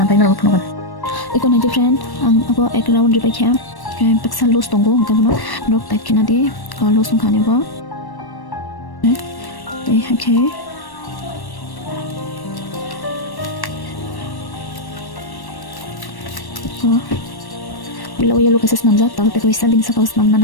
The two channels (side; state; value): right; late; 1.1 ms